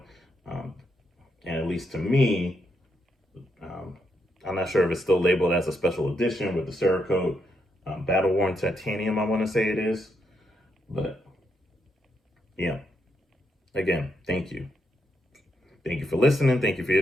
And at least to me, I'm not sure if it's still labeled as a special edition with the Cerakote Battle Worn Titanium, I want to say it is. But yeah, again, thank you. Thank you for listening. Thank you for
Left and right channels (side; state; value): both; normal; correlation 0.80